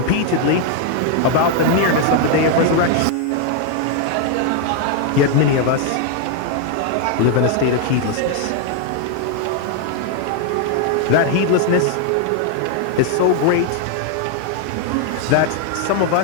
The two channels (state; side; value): different; both; correlation 0.01